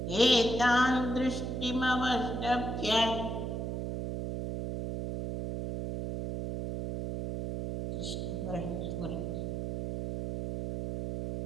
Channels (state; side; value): noise; right; hum, 4 dB below the sound